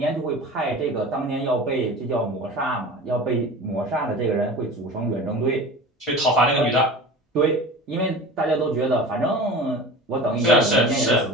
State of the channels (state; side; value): normal; both; correlation 0.36